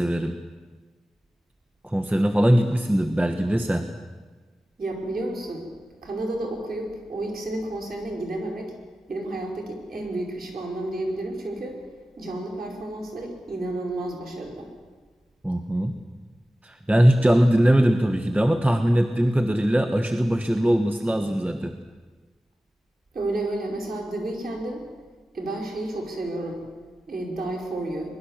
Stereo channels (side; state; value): both; normal; correlation 0.95